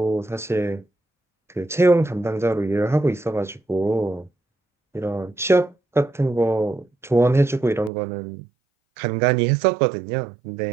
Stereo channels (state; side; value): drops out; left; at 7.9 s